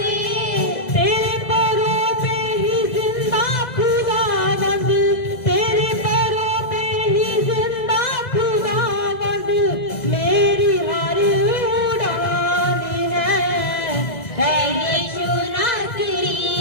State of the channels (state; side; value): late; right; 1.6 ms